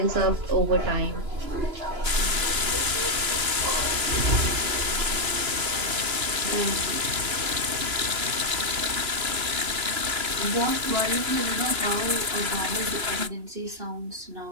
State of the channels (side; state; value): left; late; 2.9 ms